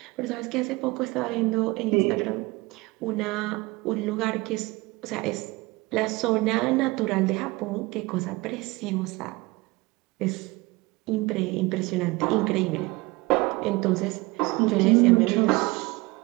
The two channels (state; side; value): quieter; left; 22.9 dB